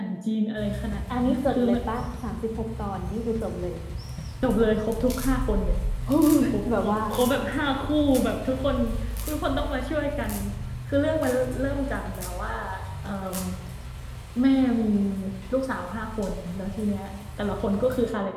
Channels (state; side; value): identical; both; correlation 1.00